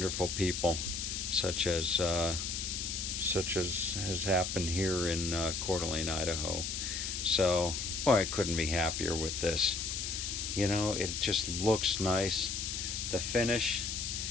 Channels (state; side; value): noise; left; hiss, 3 dB below the sound